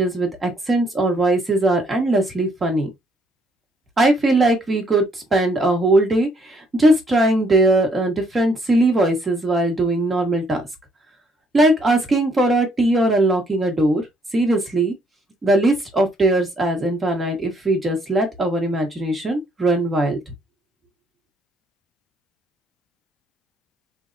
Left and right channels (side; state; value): both; normal; correlation 0.68